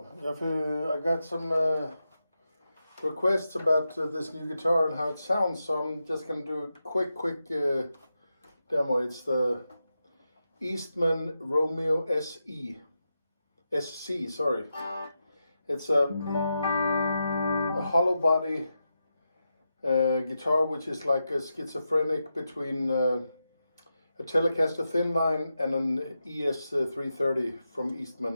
I got some requests about this new guitar and how it sounds, so I'm just gonna do a quick demo. It's the Eastman Romeo SC, sorry. It's a hollow body guitar, which is like a schizophrenic between a Telecaster thin line and an ES330 from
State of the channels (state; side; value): inverted; both; correlation -0.88